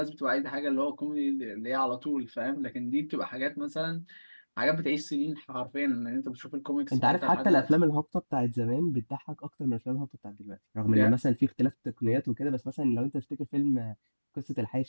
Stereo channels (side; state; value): both; inverted; correlation -1.00